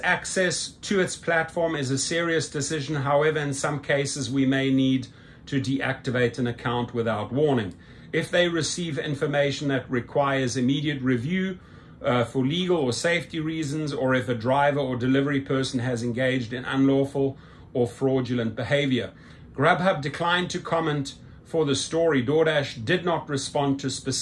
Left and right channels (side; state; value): both; identical; correlation 1.00